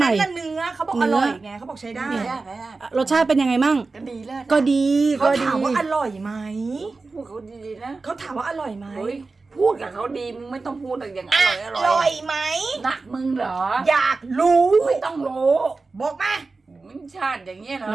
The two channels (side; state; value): left; quieter; 3.9 dB